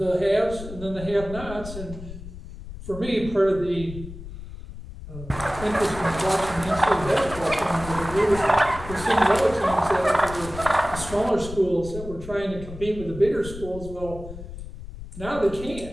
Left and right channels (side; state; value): left; noise; rumble, 12 dB below the sound